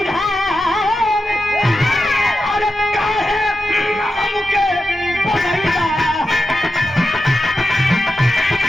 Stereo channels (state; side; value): normal; both; correlation 0.90